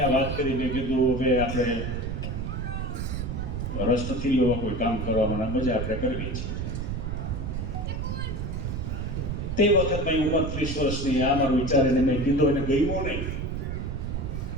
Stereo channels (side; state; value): right; noise; rumble, 3 dB below the sound